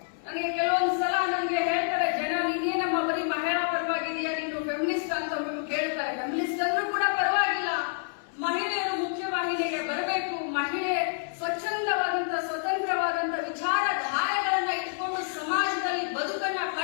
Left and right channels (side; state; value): right; silent; 59 dB below the other